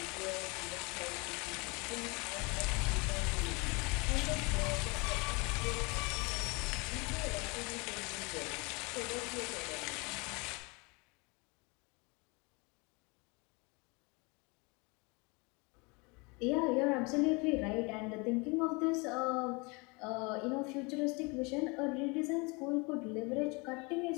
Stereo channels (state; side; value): quieter; right; 28.7 dB